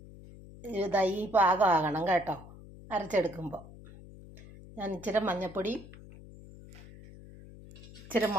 ഇതായി ഈ പാകമാകണം കേട്ടോ. അരച്ചെടുക്കുമ്പോൾ ഞാൻ ഇച്ചിരി മഞ്ഞൾപ്പൊടി, ഇച്ചിരി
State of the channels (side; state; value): left; noise; hum, 18 dB below the sound